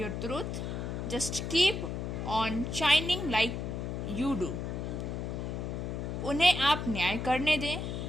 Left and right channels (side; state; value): left; noise; hum, 4 dB below the sound